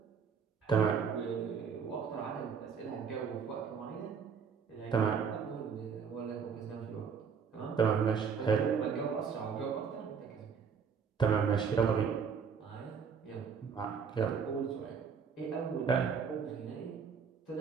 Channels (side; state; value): left; quieter; 6.4 dB